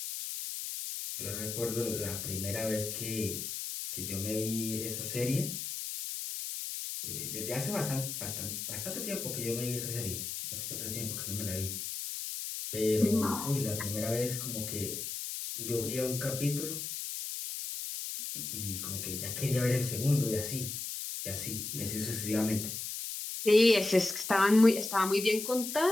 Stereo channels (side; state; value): left; noise; hiss, 5 dB below the sound